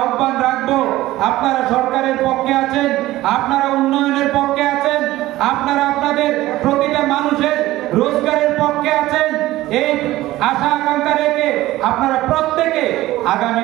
রাখবো, আপনারা সরকারের পক্ষে আছেন, আপনারা উন্নয়নের পক্ষে আছেন, আপনারা আপনাদের প্রতিটা মানুষের রোজগারের পক্ষে আছেন, এই আশা আকাঙ্ক্ষা রেখে আপনারা প্রত্যেকে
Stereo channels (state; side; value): quieter; left; 16.5 dB